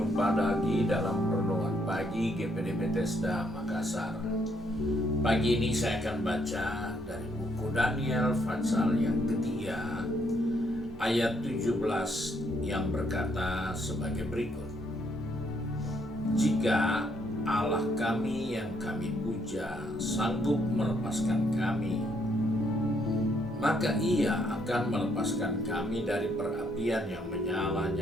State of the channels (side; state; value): both; normal; correlation 0.71